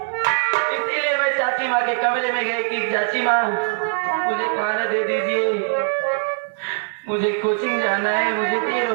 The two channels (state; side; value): silent; left; digital silence